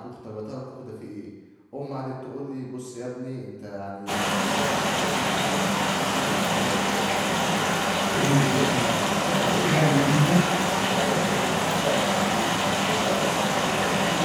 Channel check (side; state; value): both; identical; correlation 1.00